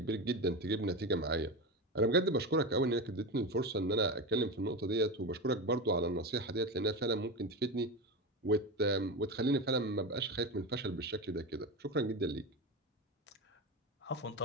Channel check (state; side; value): normal; both; correlation 0.20